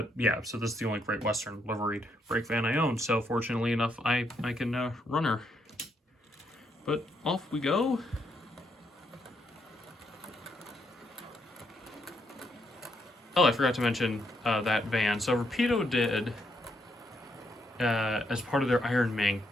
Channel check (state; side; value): normal; both; correlation 0.76